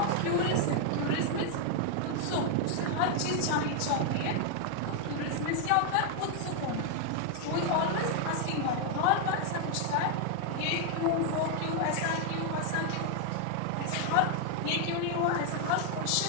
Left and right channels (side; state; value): both; different; correlation 0.00